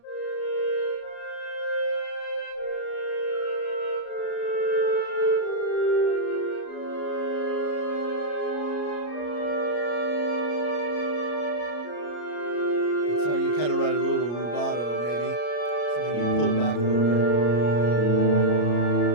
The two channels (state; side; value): late; right; 34 ms